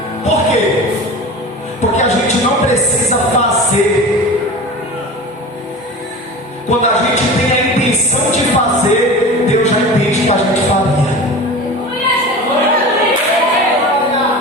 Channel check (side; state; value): both; normal; correlation 0.34